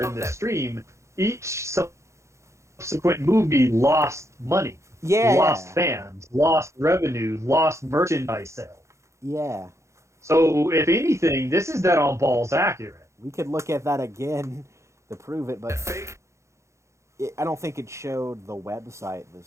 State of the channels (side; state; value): left; late; 0.14 ms